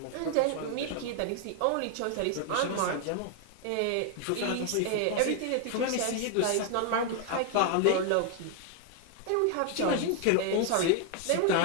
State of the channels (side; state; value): both; different; correlation 0.00